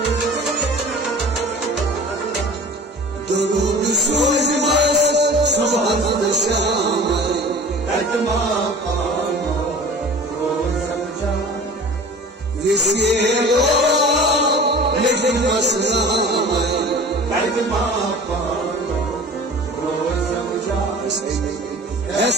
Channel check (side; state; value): both; normal; correlation 0.42